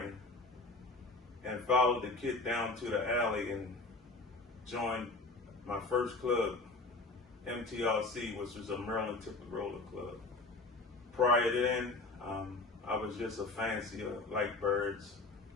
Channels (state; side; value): quieter; right; 3.3 dB